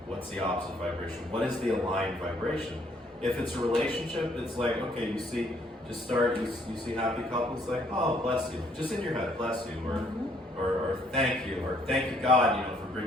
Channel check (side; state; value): both; normal; correlation 0.66